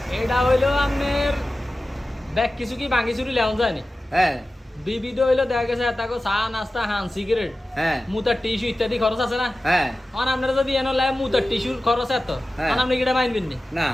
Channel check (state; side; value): normal; both; correlation 0.95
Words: এটা হইলো আপনার ব্যাগ কিছু কি ভাঙি চুরি লেওয়া যায় না। হ্যাঁ বিবিধ হইলো দেখা গেছে তাকে চা নাস্তা হান সিগারেট হ্যাঁ মুতার টিস্যু ইত্যাদি খরচ আছে না, হ্যাঁ এখন আপনারা যদি এনে লাই মুতার টিস্যুর খরচ এত, হ্যাঁ। এখন আপনি কিটা মাইনবেন নি, না।